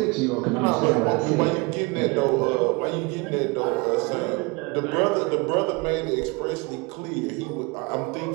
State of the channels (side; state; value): left; quieter; 27.4 dB